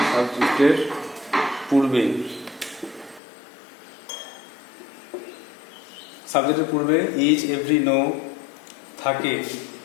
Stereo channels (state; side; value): drops out; right; at 3.2 s